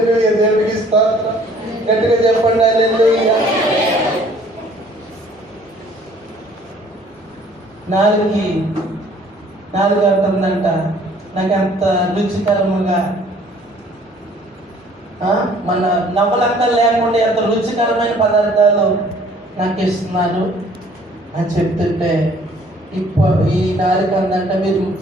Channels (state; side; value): normal; both; correlation 0.57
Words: దేవుడికి స్తోత్రం. గట్టిగా చెప్పండి హల్లెలూయా. నాలుగు అంటుందంట, నాకు అంత రుచికరముగా మన నవ్వలక్కలు లేకుండా ఎంత రుచికరమైన పదార్థాలు నాకు ఇస్తున్నారు అని చెప్తుంటే, ఈ నాలుగు అందంట, మీరు